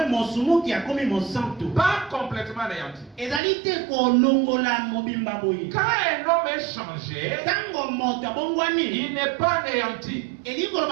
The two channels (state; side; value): drops out; left; at 3.4 s